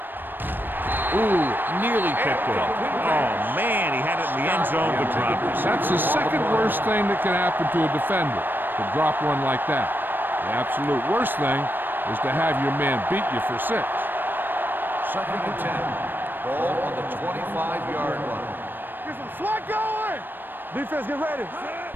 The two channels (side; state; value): left; late; 0.094 ms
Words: Ooh, nearly picked it. Oh, man, he had it in the end zone but dropped it. That's the second worst thing that can happen to a defender, to drop one like that. The absolute worst thing is to have your man beat you for 6. 2nd and 10. Ball on the 25-yard line. Get some slack going. Defense, get ready.